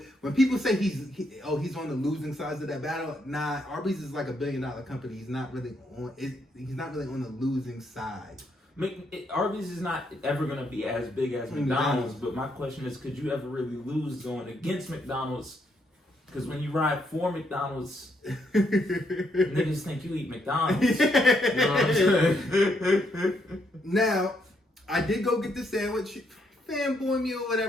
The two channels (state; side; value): normal; both; correlation 0.75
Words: when people say he's on the losing sides of that battle, nah, Arby's is like $1 billion company. He's not really on the losing side. Arby's is not ever going to be as big as McDonald's, but my question is, could you ever really lose going against McDonald's? Because when you ride for McDonald's, niggas think you eat McDonald's. You know what I'm saying? Now, I did go get the sandwich. Fanboy me or